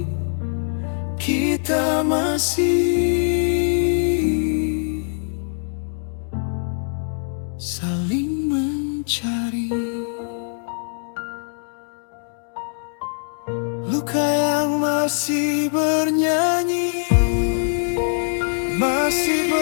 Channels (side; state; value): right; silent; digital silence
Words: kita masih saling mencari. Luka yang masih bernyanyi, masih